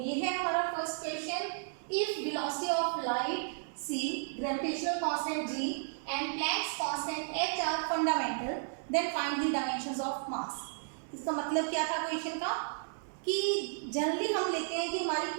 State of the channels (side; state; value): left; silent; digital silence